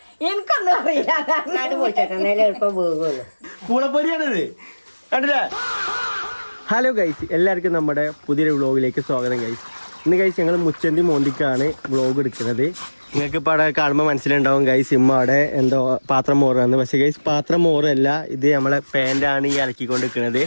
എനിക്കൊന്നും അറിയില്ല. നാട് പൊളിച്ചേക്കല്ലേ എളുപ്പം പോകുള്ളൂ. പൂളപ്പൊരിയാണിത് കണ്ടില്ലേ. ഹലോ ഗൈസ്, എല്ലാവർക്കും നമ്മുടെ പുതിയൊരു വ്ളോഗിലേക്ക് സ്വാഗതം ഗൈസ്. ഇന്ന് ഗൈസ് ഞങ്ങൾ മുച്ചന്തി മോന്തിക്കാണ് വ്ളോഗ് എടുക്കുന്നത്. നിങ്ങൾക്ക് ഇപ്പോൾ അവിടെ കാണുമ്പോൾ മനസ്സിലുണ്ടാവും ഗൈസ് ഇമ്മ അവിടെ എന്തോ പാത്രം മോറാന്ന്. പക്ഷേ ഗൈസ് പാത്രം മോറല്ല, ഇത് നമ്മളെ പാൻ്റാണ് ഈ അലക്കിക്കൊണ്ട് നിൽക്കുന്നത്.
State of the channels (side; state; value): both; inverted; correlation -1.00